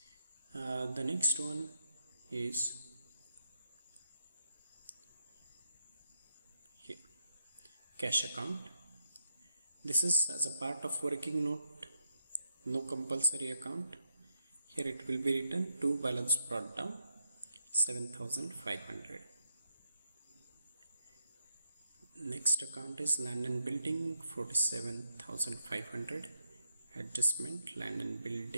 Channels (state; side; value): inverted; both; correlation -0.81